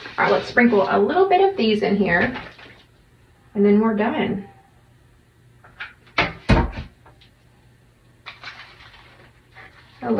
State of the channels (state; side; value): identical; both; correlation 1.00